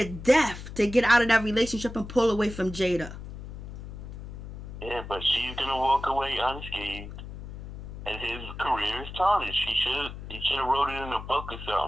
death to get out of that relationship and pull away from Jada. Yeah, but she's going to walk away unscathed, and his career is tarnished. He should have wrote it in a book or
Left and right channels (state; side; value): noise; left; hum, 11 dB below the sound